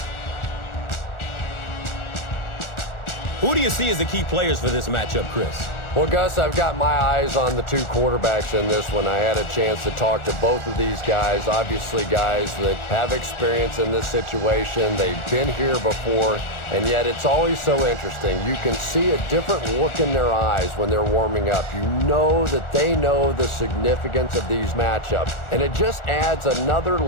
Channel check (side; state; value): right; late; 1.4 ms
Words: Who do you see as the key players for this matchup, Chris? Well, Gus, I've got my eyes on the two quarterbacks in this one. I had a chance to talk to both of these guys, obviously guys that have experience in this situation. They've been here before, and yet it's always so interesting. You can see a different look in their eyes when they're warming up. You know that they know the significance of these matchups, and it just adds another